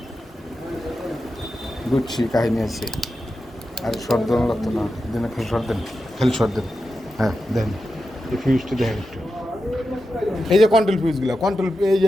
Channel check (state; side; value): normal; both; correlation 0.90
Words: গুচ্ছি কাহিনী আছে। আর শর্ট দেওয়া লাগতো না, দিনে খালি শর্ট দেন, খালি শর্ট দেন। হ্যাঁ দেন, এই ফিউজটা দেখেন একটু, এই যে কন্ট্রোল ফিউজগুলো, কন্ট্রোল এই যে